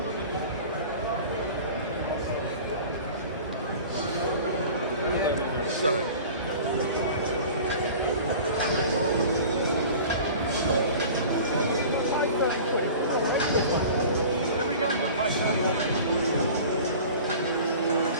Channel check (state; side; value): inverted; both; correlation -0.40